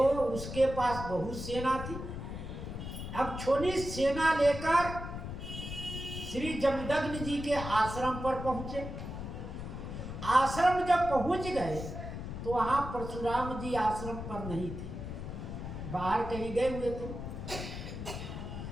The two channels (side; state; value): left; noise; rumble, 7 dB below the sound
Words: पास बहुत सेना थी। अब छोटी सेना लेकर श्री जमदग्नि जी के आश्रम पर पहुंचे। आश्रम जब पहुंच गए तो वहां परशुराम जी आश्रम पर नहीं थे, बाहर कहीं गए हुए थे।